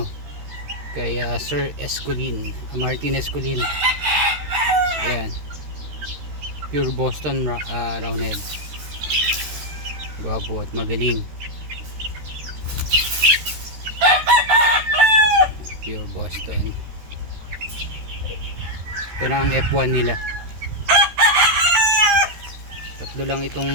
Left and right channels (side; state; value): left; late; 13 ms